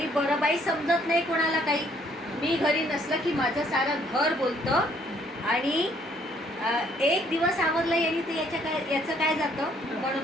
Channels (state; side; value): normal; both; correlation 0.65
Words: बरं बाई, समजत नाही कोणाला काही. मी घरी नसलं की माझं सारं घर बोलतं आणि एक दिवस आवरलं यांनी ते याचं काय जातं, म्हणून